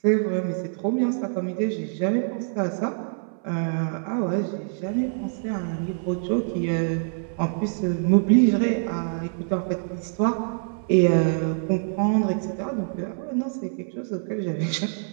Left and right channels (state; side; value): silent; left; 62 dB below the other